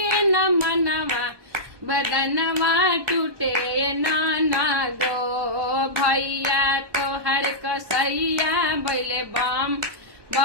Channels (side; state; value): left; late; 1.2 ms